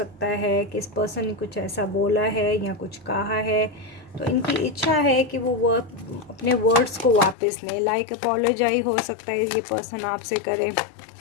है कि इस पर्सन ने कुछ ऐसा बोला है या कुछ कहा है, तो इनकी इच्छा है कि वो अपने वर्ड्स को वापस लें। लाइक अपोलोजाइज हो सकता है ये पर्सन आपसे करे,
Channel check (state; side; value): drops out; right; at 7.4 s